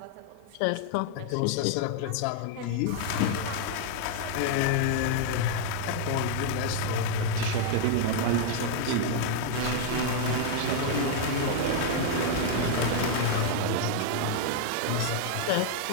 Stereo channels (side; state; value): both; different; correlation -0.01